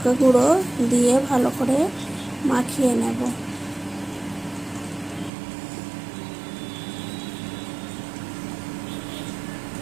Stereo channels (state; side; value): drops out; left; at 5.3 s